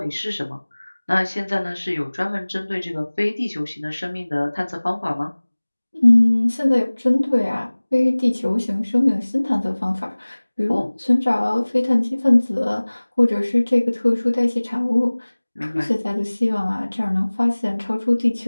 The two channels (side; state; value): both; inverted; correlation -1.00